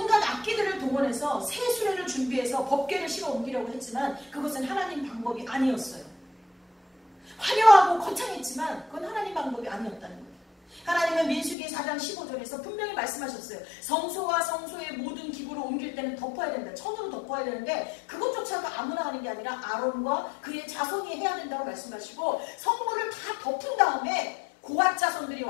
악기들을 동원해서 새 수레를 준비해서 법궤를 실어 옮기려고 했지만 그것은 하나님 방법이 아니었어요. 화려하고 거창했지만 그건 하나님 방법이 아니었다는 거예요. 하나님은 민수기 4장 15절에서 분명히 말씀하셨어요. 성소와 성소의 모든 기구를 옮길 때는 덮어야 된다. 천으로 덮어야 되는데 그것조차도 아무나 하는 게 아니라 아론과 그의 자손이 해야 된다고 말씀하시고 성물을 다 덮은 다음에 고앗 자손들이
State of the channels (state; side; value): drops out; right; at 11.6 s